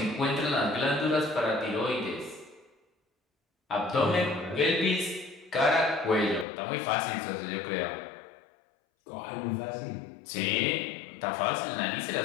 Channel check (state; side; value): drops out; right; at 6.5 s